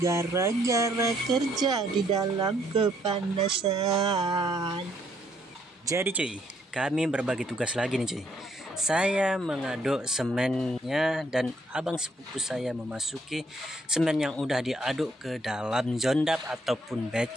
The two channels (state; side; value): normal; both; correlation 0.69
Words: gara-gara kerja di dalam kepanasan. Jadi cuy, kami berbagi tugas lagi nih cuy. Saya mengaduk semennya dan abang sepupu saya memasuki semen yang udah diaduk ke dalam jondap ataupun